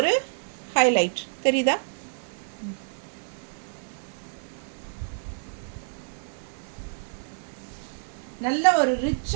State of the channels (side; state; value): left; silent; digital silence